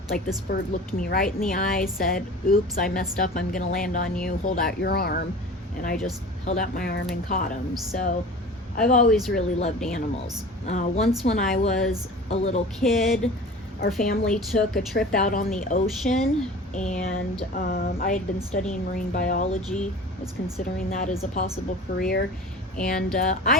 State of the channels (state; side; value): normal; both; correlation 0.38